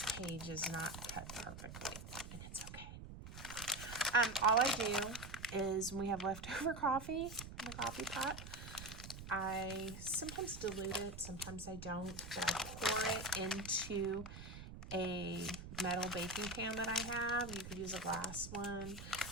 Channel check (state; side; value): noise; right; rumble, 11 dB below the sound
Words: page is not cut perfectly, and it's okay. All I do is when we have leftover coffee in the coffee pot, I sometimes dilute it, sometimes I don't, but I pour it into a metal baking pan that I have. You could use a glass one.